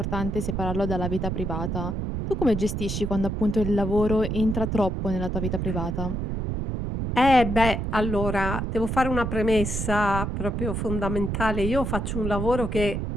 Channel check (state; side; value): noise; right; rumble, 2 dB below the sound